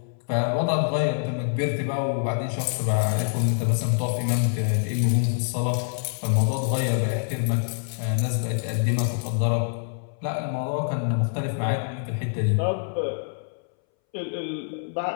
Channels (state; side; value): silent; right; 61 dB below the other